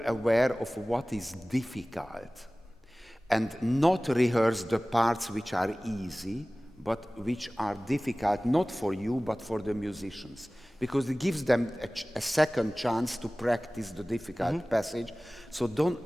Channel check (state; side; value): normal; both; correlation 0.98